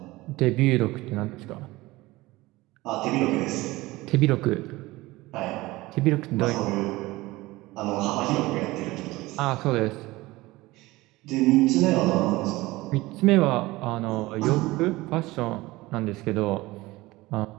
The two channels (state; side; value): quieter; left; 19.8 dB